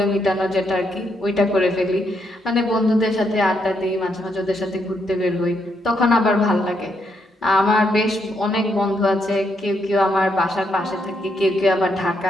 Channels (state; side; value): normal; both; correlation 0.77